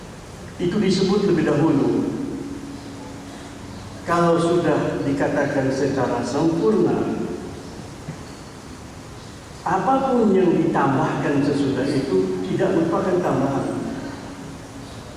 Itu disebut lebih dahulu. Kalau sudah dikatakan secara sempurna, apapun yang ditambahkan sesudah itu tidak merupakan tambahan,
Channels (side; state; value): both; identical; correlation 1.00